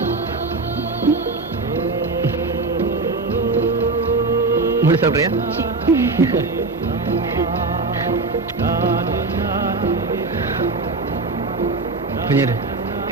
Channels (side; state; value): left; quieter; 3.7 dB